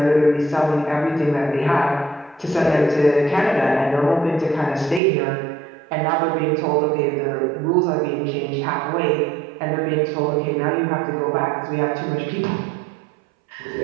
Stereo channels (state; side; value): drops out; left; at 5.0 s